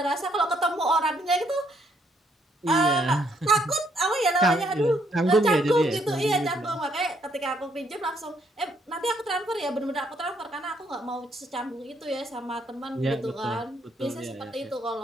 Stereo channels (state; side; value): normal; both; correlation 0.70